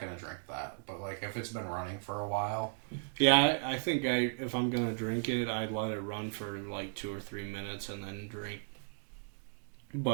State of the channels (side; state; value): left; silent; digital silence